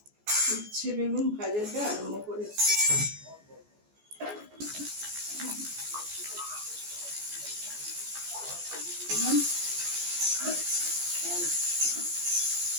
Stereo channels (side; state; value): left; late; 14 ms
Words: উচ্ছে বেগুন ভাজাটা আরম্ভ করেছি।